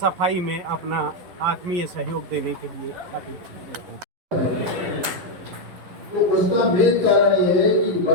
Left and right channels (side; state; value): left; late; 11 ms